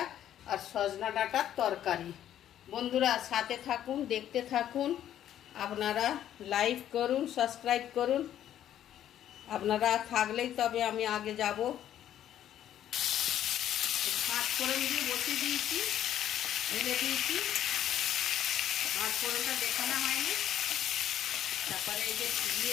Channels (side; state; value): right; quieter; 11.1 dB